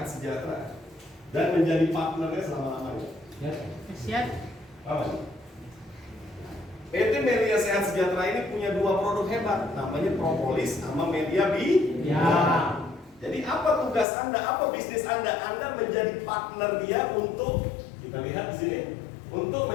Sejahtera dan menjadi partnernya selama-lamanya. Siap. Apa? PT Melia Sehat Sejahtera ini punya 2 produk hebat, namanya propolis sama media Ya. Jadi apa tugas Anda? Apa bisnis Anda? Anda menjadi partner dia untuk, kita lihat di sini, untuk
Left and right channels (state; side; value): drops out; right; at 14.1 s